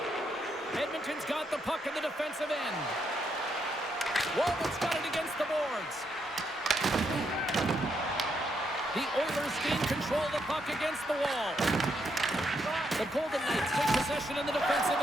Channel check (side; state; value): both; normal; correlation 0.78